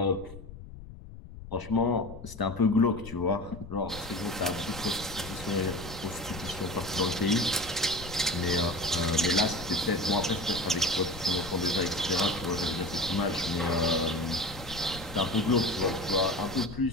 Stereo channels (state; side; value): noise; left; rumble, 14 dB below the sound